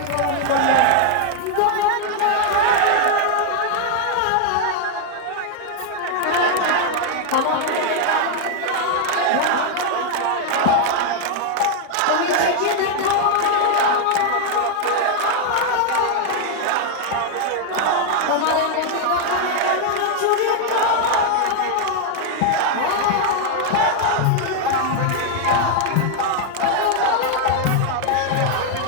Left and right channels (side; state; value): both; different; correlation 0.00